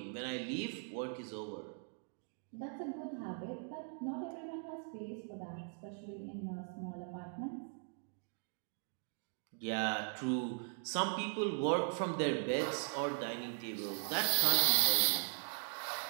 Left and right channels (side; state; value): left; silent; 51 dB below the other